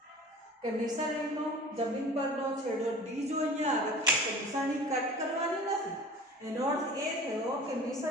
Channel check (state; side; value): normal; both; correlation 0.41